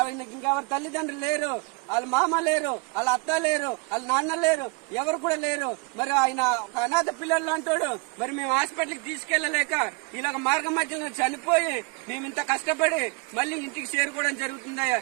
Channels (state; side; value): quieter; left; 30.0 dB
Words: ఇంకా తల్లిదండ్రులు లేరు, వాళ్ళ మామ లేరు, వాళ్ళ అత్త లేరు, వాళ్ళ నాన్న లేరు, ఎవరు కూడా లేరు. మరి ఆయన ఒక అనాథ పిల్లలు అంటాడు. మరి మేము హాస్పిటల్కి తీసుకెళ్లలేక ఇలాగ మార్గం మధ్యలో చనిపోయి మేము ఇంత కష్టపడి మళ్ళీ ఇంటికి చేరుకోవడం జరుగుతుందయ్యా.